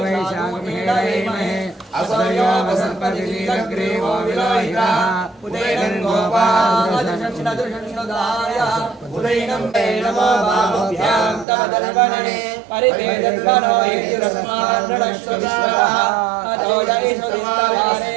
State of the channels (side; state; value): left; drops out; at 11.5 s